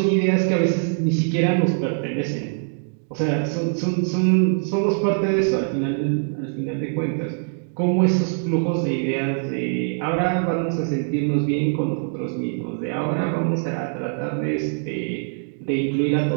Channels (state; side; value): silent; left; digital silence